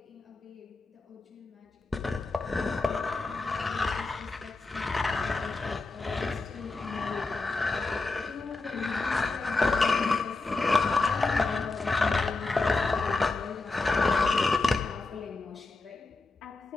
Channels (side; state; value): right; quieter; 3.5 dB